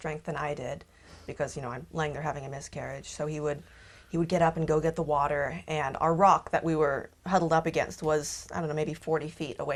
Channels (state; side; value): identical; both; correlation 1.00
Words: than I did because, you know, I'm laying there having a miscarriage. So he would get up and go get the water, and our rock that we were huddled up against was, I don't know, maybe 40 feet